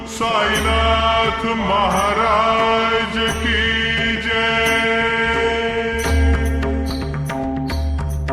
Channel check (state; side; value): identical; both; correlation 1.00